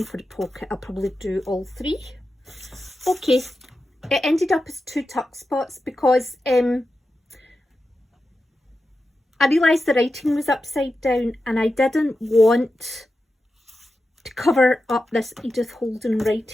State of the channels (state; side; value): normal; both; correlation 0.91